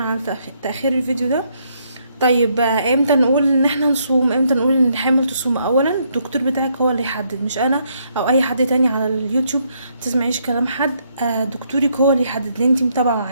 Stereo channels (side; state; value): both; inverted; correlation -0.73